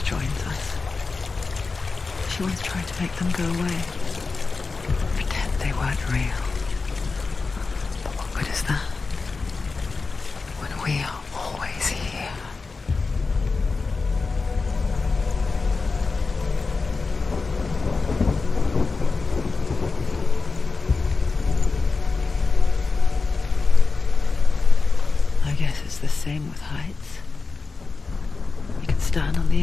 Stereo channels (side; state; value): right; quieter; 4.2 dB